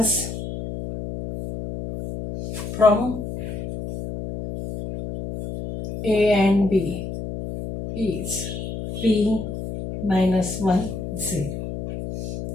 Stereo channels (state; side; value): noise; left; hum, 7 dB below the sound